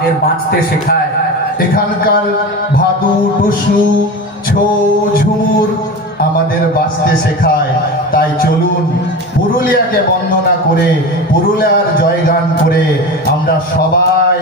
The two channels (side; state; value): both; normal; correlation 0.28